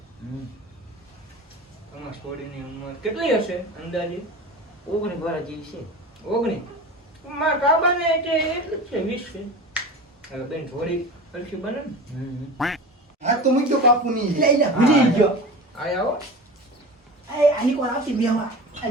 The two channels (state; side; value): normal; both; correlation 0.32